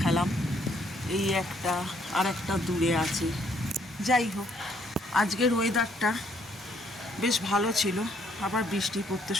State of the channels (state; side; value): normal; both; correlation 0.68